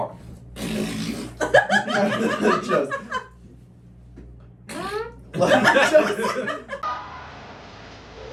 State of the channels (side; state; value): both; identical; correlation 1.00